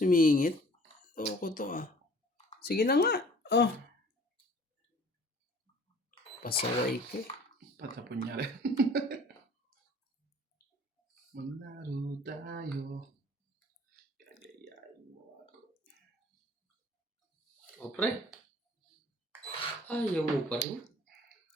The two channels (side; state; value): both; normal; correlation 0.51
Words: Ko to Sige na nga. Pasaway ka. Patapon niya rin. Maglaro tayo. Gagayain mo ako. O pre, ayaw mo pa rin.